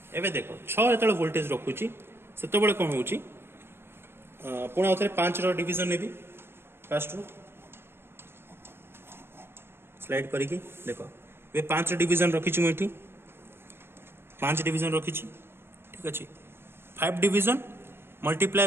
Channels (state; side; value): late; left; 0.11 ms